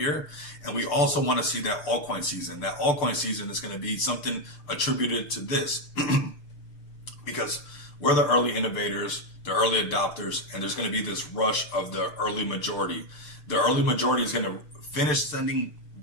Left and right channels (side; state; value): right; late; 6.7 ms